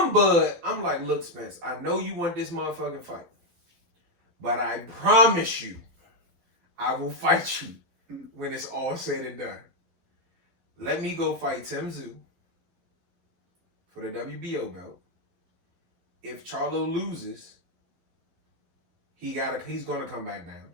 Bud, I'm like, look, Spence, I know you want this motherfucking fight, but I promise you, I will fight you when it's all said and done. Let me go fight Tim Tszyu for the WBO belt. If Charlo loses, he's gonna come back down.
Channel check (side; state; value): left; late; 12 ms